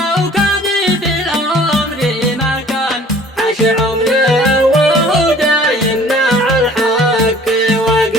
كان في الأمر ما كان عاش عمره وهو دايم مع الحق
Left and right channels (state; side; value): normal; both; correlation 0.51